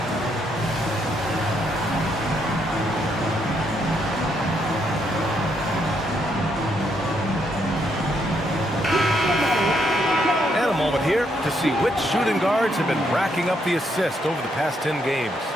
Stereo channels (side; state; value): both; normal; correlation 0.75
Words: Here to see which shooting guards have been racking up the assist over the past 10 games.